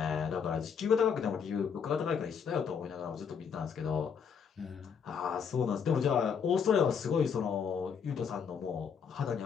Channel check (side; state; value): right; quieter; 6.7 dB